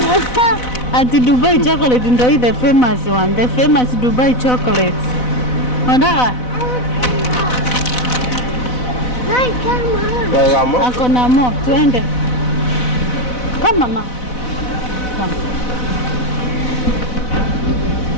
Ati Dubai chocolate ndio hii the famous one. The famous Dubai chocolate. Nataka ako na mo, tuende. Come mama. Come.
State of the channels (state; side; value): late; right; 4.0 ms